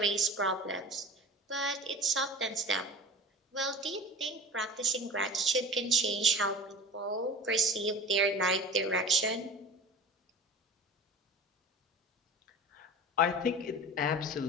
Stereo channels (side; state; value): both; normal; correlation 0.36